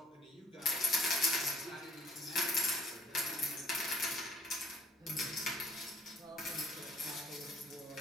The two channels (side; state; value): both; normal; correlation 0.58